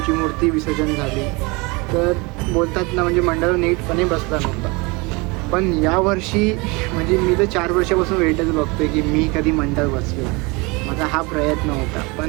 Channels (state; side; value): quieter; left; 26.6 dB